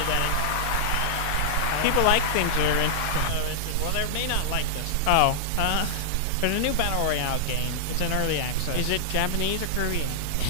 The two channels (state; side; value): different; both; correlation -0.02